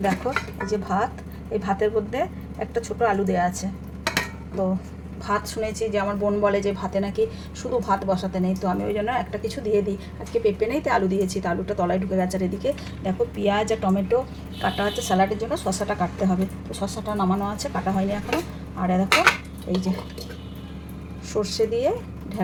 দেখো, এই যে ভাত, এই ভাতের মধ্যে একটা ছোট আলু দেওয়া আছে। তো ভাত শুনেছি যে আমার বোন বলে যে ভাতে নাকি শুধু ভাত বসাতে নেই, তো আমি ওই জন্য একটা কিছু দিয়ে দিই। আজকে পেঁপে নেই, তো আলু দিয়েছি, তো আলুটা তলায় ঢুকে গেছে। আর এদিকে দেখো, পেঁয়াজ আর টমেটো কাটা আছে স্যালাডের জন্য, শসাটা কাটতে হবে। তো শসাটা নামানো আছে, কাটা হয়নি এখনও। আর দেখো, এই যে সর্ষে দিয়ে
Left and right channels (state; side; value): identical; both; correlation 1.00